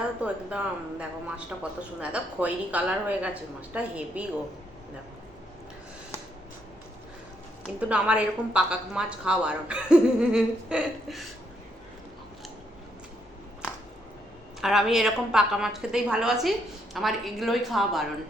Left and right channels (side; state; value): both; normal; correlation 0.75